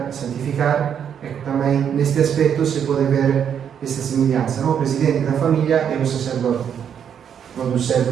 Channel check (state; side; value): quieter; left; 8.3 dB